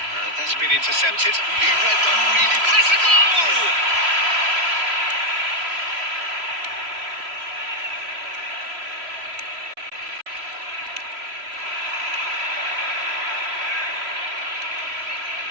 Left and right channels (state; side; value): late; left; 3.0 ms